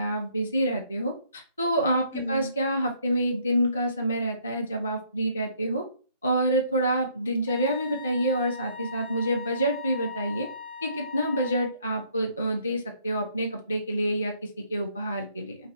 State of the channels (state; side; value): inverted; both; correlation -0.65